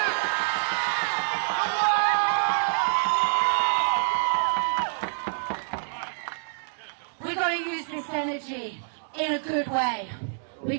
We've got to use this energy in a good way. We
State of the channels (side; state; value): left; silent; digital silence